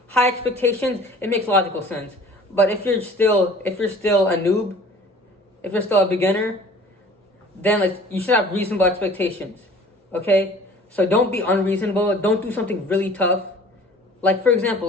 High expectations, it makes logical sense. But if you're still a noob, if you're still a beginner, then you should have reasonable expectations. Okay? So don't be unreasonable. Don't do something really tough. For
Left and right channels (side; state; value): both; normal; correlation 0.48